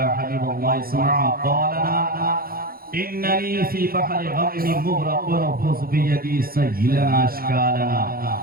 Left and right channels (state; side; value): late; left; 0.43 ms